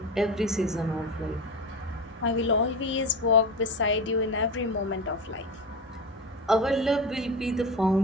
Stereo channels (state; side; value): normal; both; correlation 0.24